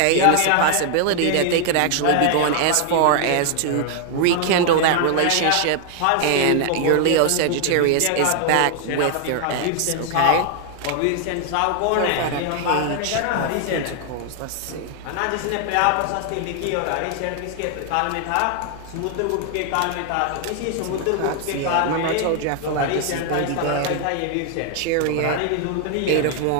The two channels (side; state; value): both; different; correlation 0.00